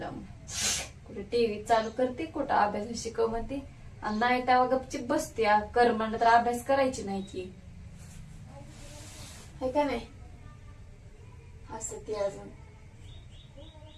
कुठे टीव्ही चालू करते, कुठं अभ्यास शिकव म्हणते, आणि नाही तेव्हा गपचिप बसते. कर म्हणलं तर अभ्यास करायची नाही की, है का नाही? असं ती अजून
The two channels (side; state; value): both; identical; correlation 1.00